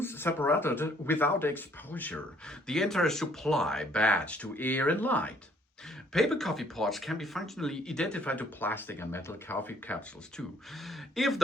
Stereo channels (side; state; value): both; normal; correlation 0.63